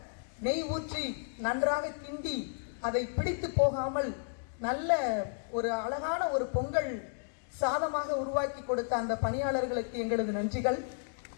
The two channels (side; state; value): right; silent; digital silence